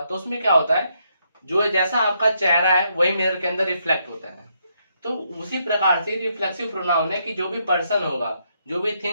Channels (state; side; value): inverted; both; correlation -0.76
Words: तो उसमें क्या होता है, जो जैसा आपका चेहरा है वही मिरर के अंदर रिफ्लेक्ट होता है। तो उसी प्रकार से रिफ्लेक्सिव प्रोनाउन है कि जो भी पर्सन होगा, जो भी